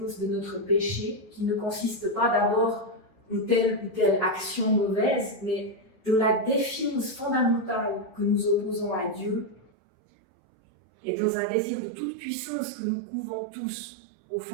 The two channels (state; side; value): drops out; left; at 9.7 s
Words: de notre péché, qui ne consiste pas d'abord en telle ou telle action mauvaise, mais de la défiance fondamentale que nous opposons à Dieu et dans un désir de toute puissance que nous couvons tous au